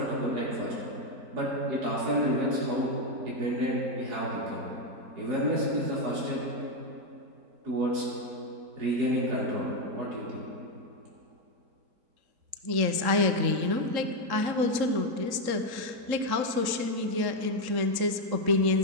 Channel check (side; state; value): left; late; 3.8 ms